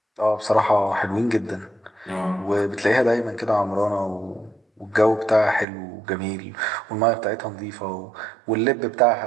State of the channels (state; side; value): drops out; left; at 5.7 s